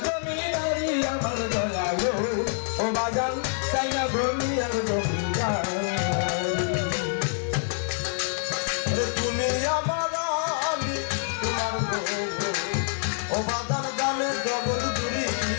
জমিদারি আমার দয়ালো ও বাজান সাইনা দুনিয়ার জমিদারি তুমি আমার রানী তোমার গো ও বাজার জানে জগৎ জুড়ি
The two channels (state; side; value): silent; right; 58 dB below the other